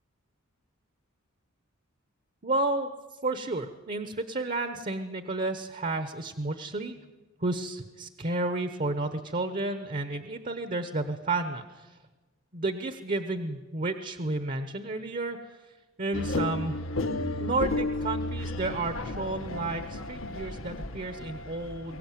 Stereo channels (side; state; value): both; normal; correlation 0.21